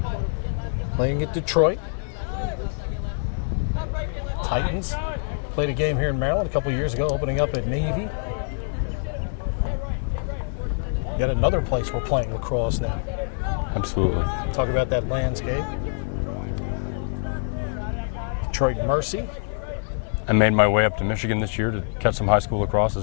Playing at Detroit. Titans played a game here in Maryland a couple years ago, opening up at Navy. Yet another place we're playing lacrosse now. Absolutely. Talk about that landscape. Detroit Mercy. I made my way up to Michigan this year to catch some high school lacrosse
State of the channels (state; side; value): silent; right; 62 dB below the other